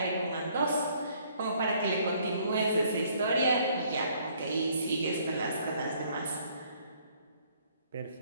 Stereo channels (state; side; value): inverted; both; correlation -0.63